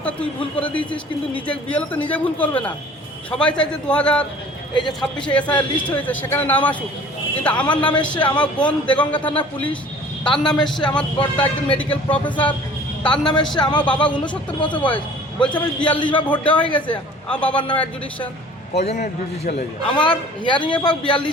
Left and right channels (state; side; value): normal; both; correlation 0.48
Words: তুই ভুল করে দিয়েছিস, কিন্তু নিজে বিএলও তো নিজে ভুল করবে না। সবাই চাই যে 2000 এই যে 26-এ এসআইআর লিস্ট হয়েছে সেখানে নাম আসুক, কিন্তু আমার নাম এসছে, আমার বোন দেগঙ্গা থানা পুলিশ, তার নাম এসছে, আমার বড়টা একজন মেডিকেল প্রফেসর, তার নাম এসছে, আমার বাবা 69 বছর বয়স, বলছে আমি 42 বার ভোট দেওয়া হয়ে গেছে, আমার বাবার নাম অ্যাডজুডিকশন। কজনের জুডিশিয়াল হয়ে যায়? আমার হিয়ারিংয়ে পাক 42